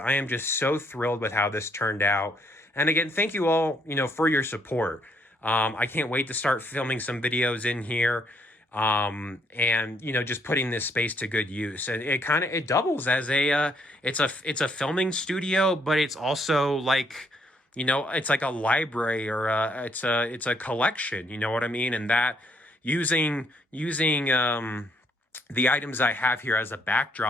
I am just so thrilled with how this turned out. And again, thank you all, for your support. I can't wait to start filming some videos in here. And just putting this space to good use. And it doubles as it's a filming studio, but it's also like, it's like a library, or it's a collection, you know what I mean? And that using the items I have here as a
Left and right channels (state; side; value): normal; both; correlation 0.69